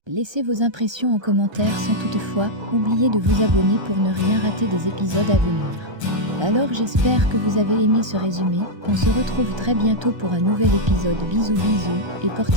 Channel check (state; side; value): late; left; 1.3 ms